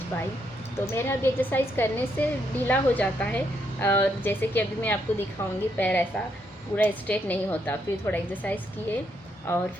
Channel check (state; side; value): normal; both; correlation 0.76